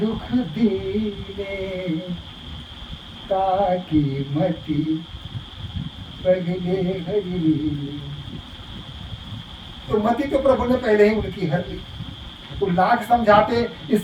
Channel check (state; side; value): identical; both; correlation 1.00